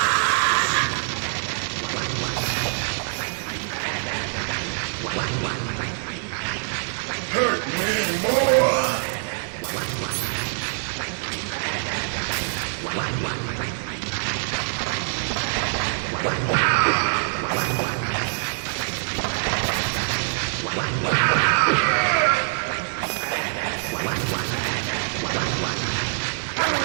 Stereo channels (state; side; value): silent; left; 62 dB below the other